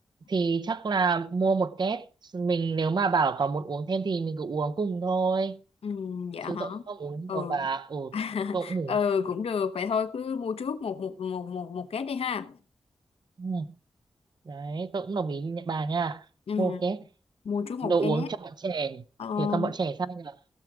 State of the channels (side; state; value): both; normal; correlation 0.66